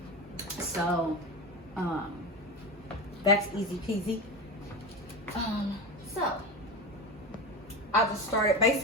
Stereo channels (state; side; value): normal; both; correlation 0.23